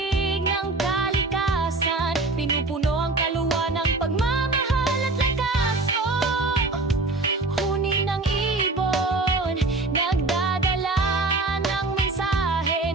ng kalikasan. Pinupuno ang kaluluwa ng pagmamahal at lakas. Huni ng ibon, nagdadala ng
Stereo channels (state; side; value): quieter; left; 3.3 dB